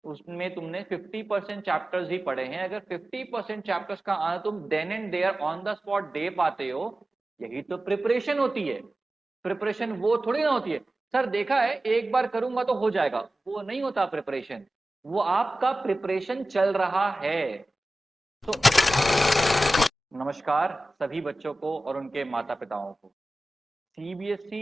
उसमें तुमने 50% चैप्टर्स ही पढ़े हैं, अगर 50% चैप्टर्स का आना तुम then and there on the spot दे पाते हो, यही तो प्रिपरेशन होती है। प्रिपरेशन वो थोड़ी ना होती है सर देखा है एक बार करूंगा तो हो जाएगा, वो नहीं होता प्रिपरेशन। वो आपका प्रिपरेशन चल रहा है। तो नमस्कार सभी बच्चों को और उनके माता पिताओं को।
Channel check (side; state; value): both; normal; correlation 0.95